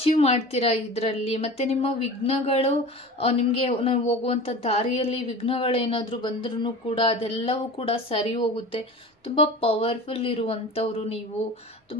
ಮಾಡ್ತೀರಾ ಇದರಲ್ಲಿ. ಮತ್ತು ನಿಮ್ಮ ವಿಘ್ನಗಳು ನಿಮಗೆ ಹೋಗುವಂಥ ದಾರಿಯಲ್ಲಿ ವಿಘ್ನಗಳೇನಾದರೂ ಬಂದ್ರೂ ಕೂಡ ಅದೆಲ್ಲವೂ ಕೂಡ ಸರಿ ಹೋಗುತ್ತೆ. ತುಂಬ ಪವರ್ಫುಲ್ ಇರುವಂಥವ್ರು ನೀವು.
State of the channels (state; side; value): normal; both; correlation 0.35